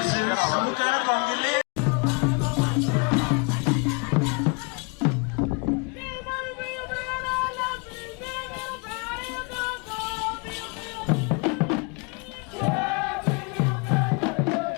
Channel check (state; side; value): quieter; right; 33.0 dB